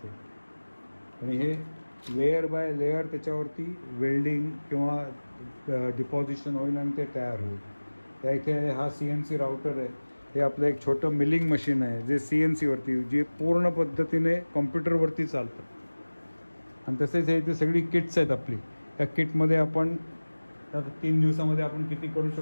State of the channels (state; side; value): inverted; both; correlation -1.00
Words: आणि हे लेयर बाय लेयर त्याच्यावरती वेल्डिंग किंवा डिपॉझिशन होईल आणि ते तयार होईल. त्या इथे हा CNC राउटर आहे. हे आपलं एक छोटं मिलिंग मशीन आहे जे CNCवरती जे पूर्ण पद्धतीने कॉम्प्युटरवरती चालतं. आणि तसेच हे इथे सगळी किट्स आहेत आपली. त्या किटमध्ये आपण आता 3 दिवसामध्ये आपण किती करू